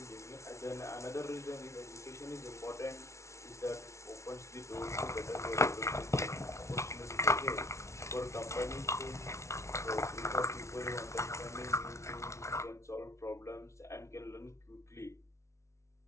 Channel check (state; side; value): late; right; 0.14 ms